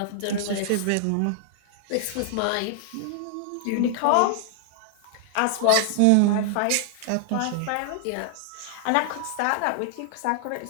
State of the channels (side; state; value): both; different; correlation -0.01